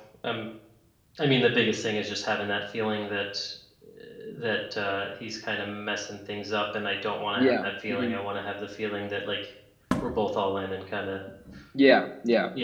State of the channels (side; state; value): both; identical; correlation 1.00